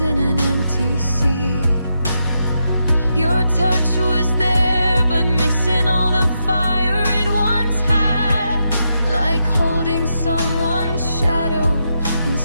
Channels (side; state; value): both; inverted; correlation -0.83